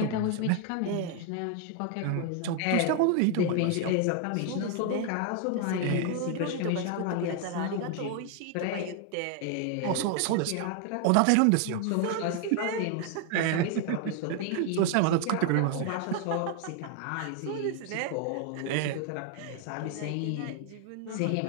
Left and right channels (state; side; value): different; both; correlation 0.00